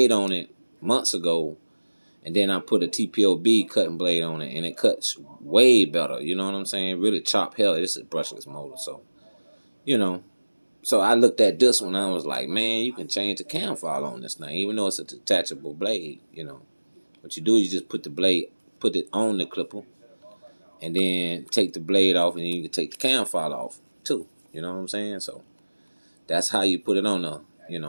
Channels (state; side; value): inverted; both; correlation -1.00